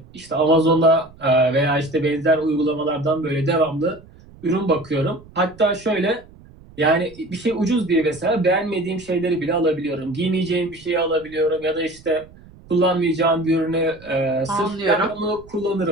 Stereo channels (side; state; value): right; noise; rumble, 23 dB below the sound